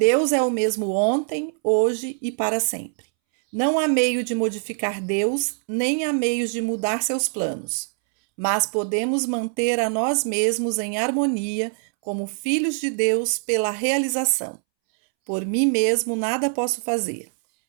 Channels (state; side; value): silent; left; 63 dB below the other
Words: é o mesmo ontem, hoje e para sempre. Não há meio de modificar Deus, nem há meios de mudar seus planos, mas podemos manter a nós mesmos em harmonia como filhos de Deus pela realização. Por mim mesmo nada posso fazer,